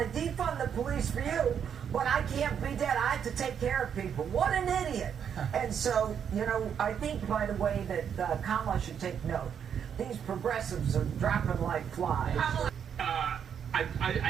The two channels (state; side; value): quieter; left; 8.0 dB